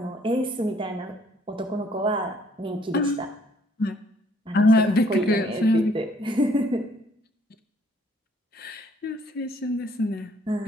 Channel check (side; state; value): both; normal; correlation 0.63